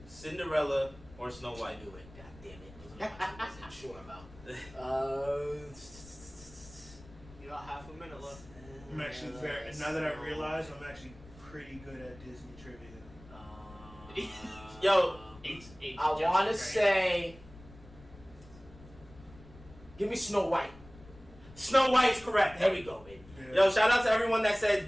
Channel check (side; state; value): left; noise; rumble, 20 dB below the sound